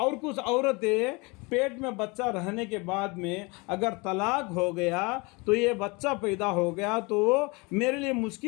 کچھ عورتیں پیٹ میں بچہ رہنے کے بعد میں اگر طلاق ہو گیا تو یہ بچہ پیدا ہو گیا تو میرے لیے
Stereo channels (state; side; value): quieter; right; 27.4 dB